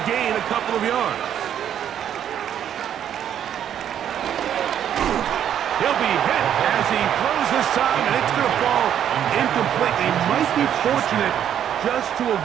gain a couple of yards. He'll be hit as he throws this time, and it's going to fall incomplete. He might be fortunate just to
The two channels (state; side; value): quieter; left; 9.7 dB